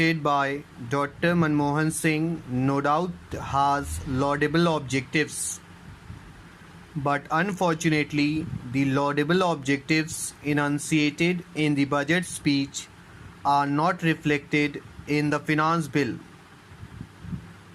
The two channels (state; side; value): identical; both; correlation 1.00